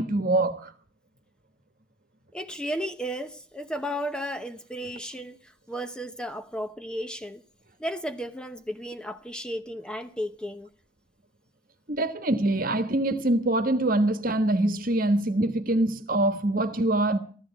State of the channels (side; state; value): both; normal; correlation 0.53